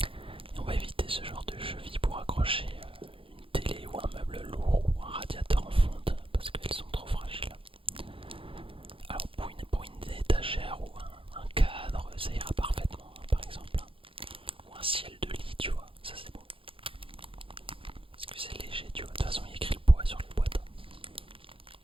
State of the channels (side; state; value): left; late; 0.26 ms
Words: Et on va éviter ce genre de cheville pour accrocher une télé ou un meuble lourd ou un radiateur en fonte parce qu'elles sont trop fragiles. Alors pour une étagère ou un cadre, ça ira parfaitement, hein, par exemple. Ou un ciel de lit, tu vois, ça c'est bon. Parce que c'est léger, tu vois, de toute façon il y a écrit le poids sur les boîtes.